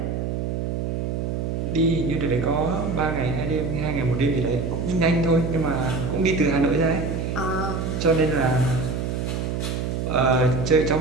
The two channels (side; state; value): right; noise; hum, 2 dB below the sound